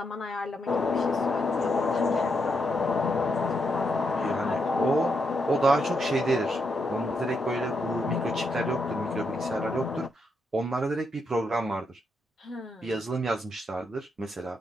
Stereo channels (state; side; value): normal; both; correlation 0.80